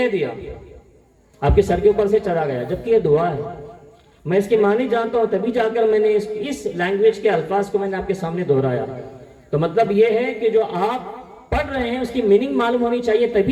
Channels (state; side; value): identical; both; correlation 1.00